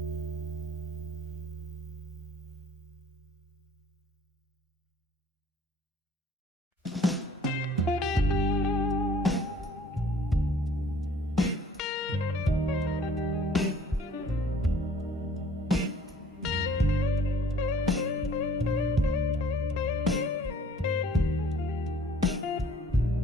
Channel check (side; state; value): both; normal; correlation 0.54